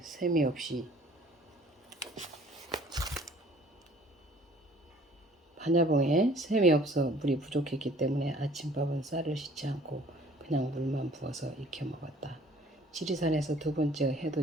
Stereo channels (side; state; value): both; normal; correlation 0.54